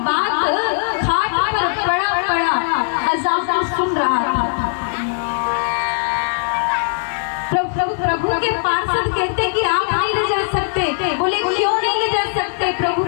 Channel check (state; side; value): silent; right; digital silence